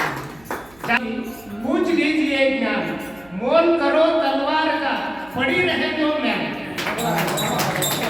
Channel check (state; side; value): noise; right; hum, 27 dB below the sound